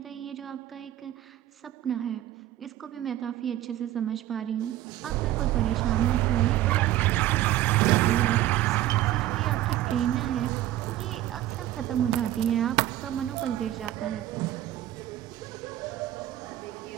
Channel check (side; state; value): left; quieter; 13.7 dB